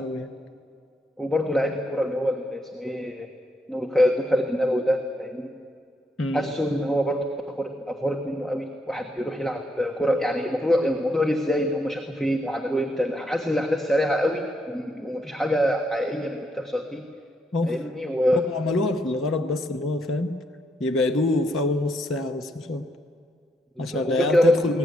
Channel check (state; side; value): normal; both; correlation 0.77